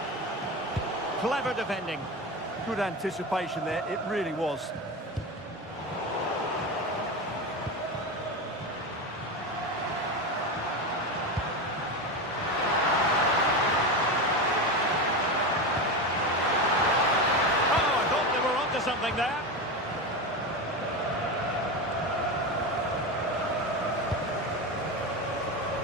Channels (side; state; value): both; normal; correlation 0.20